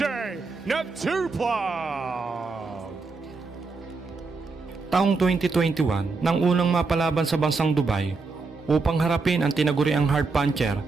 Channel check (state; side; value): quieter; left; 4.2 dB